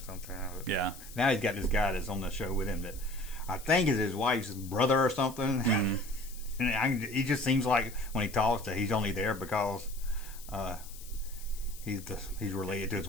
sometimes. Yeah. Now he's got this guy that's on the show with him that I think is his wife's brother or something. And he just seems like when he talks that he's only there because he's related to his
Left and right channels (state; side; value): noise; left; hiss, 17 dB below the sound